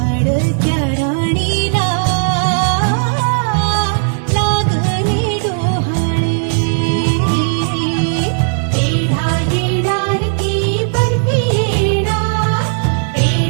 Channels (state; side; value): silent; left; 70 dB below the other